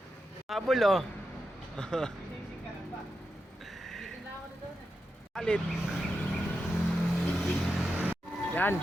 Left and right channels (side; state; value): both; normal; correlation 0.88